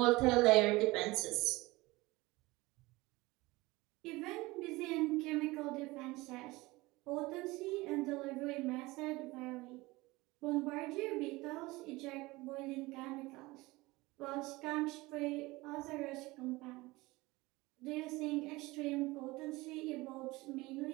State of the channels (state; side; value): quieter; left; 21.3 dB